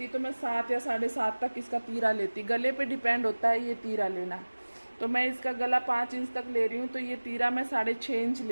तो मैं 7 या 7.5 तक इसका तीरा लेती। गले पे डिपेंड होता है ये तीरा लेना। तो मैं इसका गला 5 इंच तक ले रही हूँ, तो ये तीरा मैं 6.5 इंच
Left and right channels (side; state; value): both; inverted; correlation -1.00